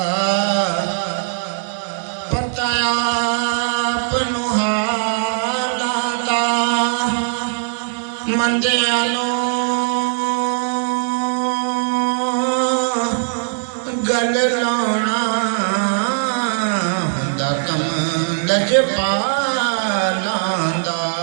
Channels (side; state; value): left; silent; digital silence